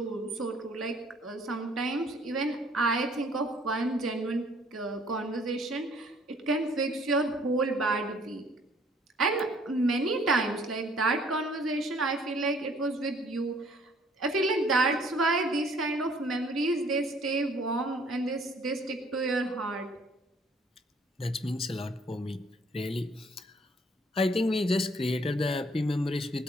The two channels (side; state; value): both; normal; correlation 0.59